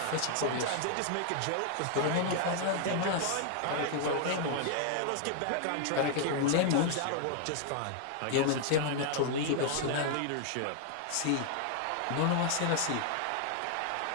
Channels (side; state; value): both; different; correlation 0.00